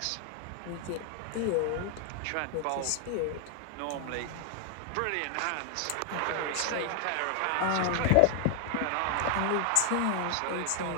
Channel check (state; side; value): different; both; correlation 0.00